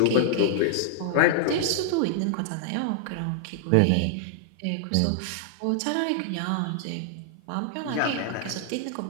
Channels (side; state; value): both; different; correlation -0.01